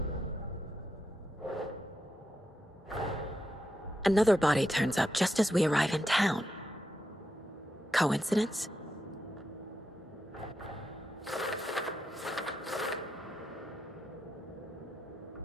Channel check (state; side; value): normal; both; correlation 0.85